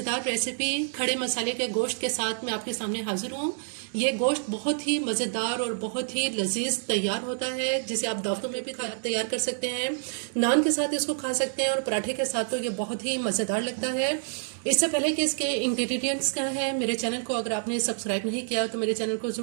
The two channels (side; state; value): left; silent; digital silence